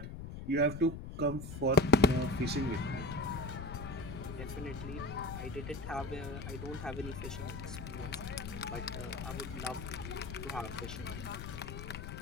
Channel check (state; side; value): noise; left; rumble, 8 dB below the sound